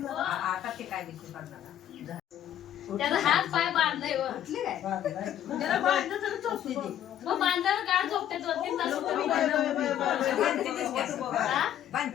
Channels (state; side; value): quieter; right; 10.9 dB